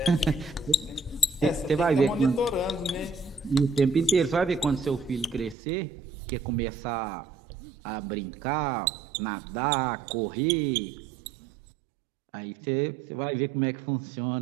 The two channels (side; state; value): left; drops out; at 5.6 s